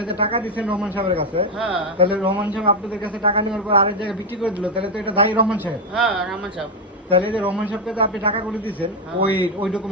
যে টাকা দিছেন রহমান সাহেবের কাছে, হ্যাঁ, তাহলে রহমান সাহেব আপনাদের কাছে টাকা নেওয়ার পর আরেক জায়গায় বিক্রি করে দিল, তাহলে তো এটা দায়ী রহমান সাহেব। হ্যাঁ, রহমান সাহেব। তাহলে যে রহমান সাহেবকে তো আপনি টাকা করে দিয়েছেন, ওই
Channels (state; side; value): normal; both; correlation 0.06